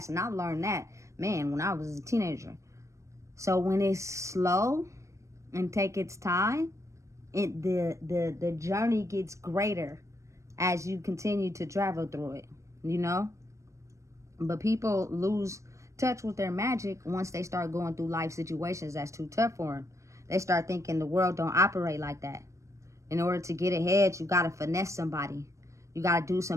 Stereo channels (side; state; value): left; late; 0.15 ms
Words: And I learned that, man, when I was a teenager. So when it's slow and take its time, the journey gets greater as you continue to travel through it, you know? But people lose touch with their magic once they start going through life situations that's too tough for them. They start thinking the world don't operate like that. In order to get ahead, you got to finesse somebody. You got to do